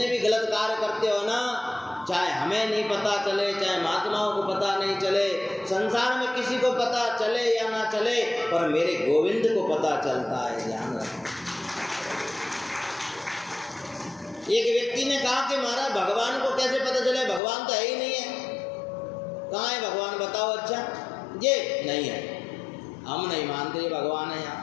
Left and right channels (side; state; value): right; drops out; at 17.4 s